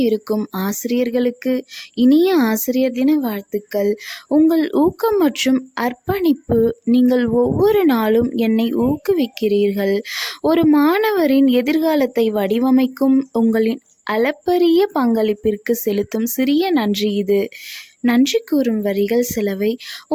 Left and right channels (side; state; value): both; identical; correlation 1.00